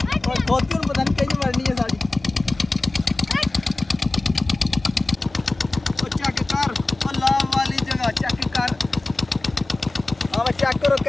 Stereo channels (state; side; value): quieter; right; 3.0 dB